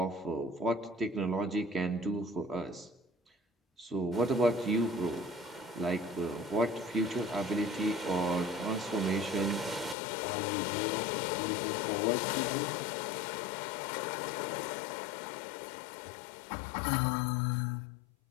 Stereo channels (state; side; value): drops out; right; at 10.0 s